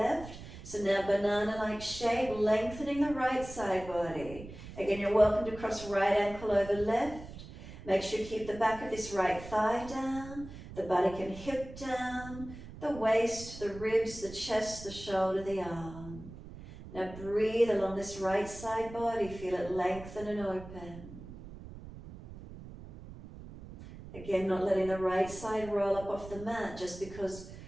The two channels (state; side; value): noise; right; rumble, 14 dB below the sound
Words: So now banana-like shape, lengthening the right side body. Again, you're welcome to cross right ankle over left. Make sure you keep the back of this right thigh down, the buttock and hip down, the waist, the ribs, the chest, the shoulder, the arm. Now breathe along this right side body, feel it lengthen and open. Again, not letting the right side roll up off the mat just because